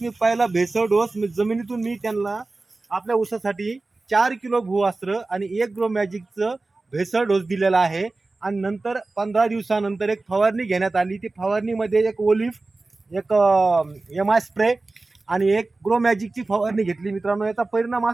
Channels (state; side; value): quieter; left; 3.4 dB